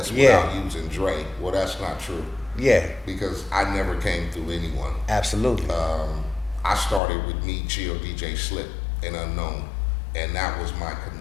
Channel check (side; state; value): right; drops out; at 7.0 s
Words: without using Dre. Well, that's not true. Yeah. Because I never came through anyone. Absolutely. I started with me, Chill, DJ Slip, and Unknown, and that was my